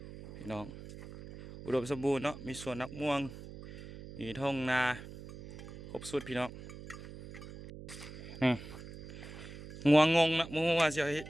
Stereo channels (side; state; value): right; noise; hum, 13 dB below the sound